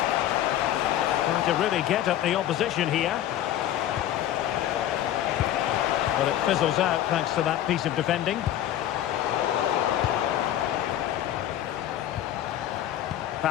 Trying to really get at the opposition here. But it fizzles out thanks to that piece of defending.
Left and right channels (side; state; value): right; quieter; 12.1 dB